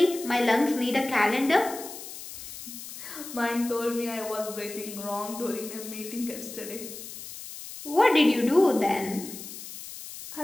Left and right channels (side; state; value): left; noise; hiss, 12 dB below the sound